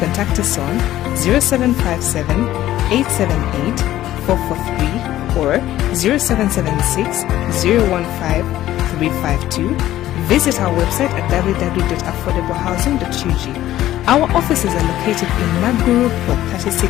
contact us on 0757 878 443 or 0776 015 352. Visit our website at www.affordablehousing.ug. Our offices are located in Maguru Plot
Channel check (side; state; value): right; quieter; 13.9 dB